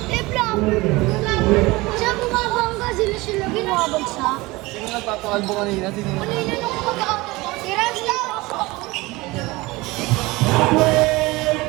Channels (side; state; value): left; quieter; 21.8 dB